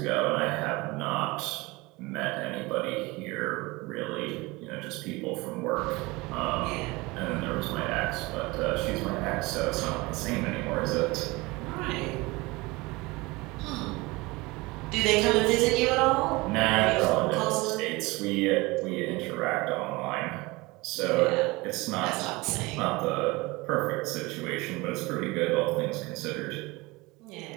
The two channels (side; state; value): left; quieter; 23.1 dB